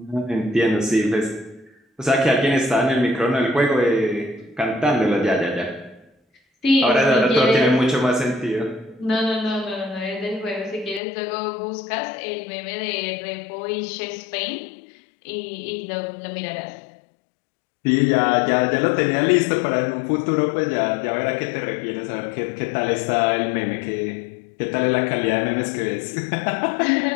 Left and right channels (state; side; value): drops out; right; at 11.0 s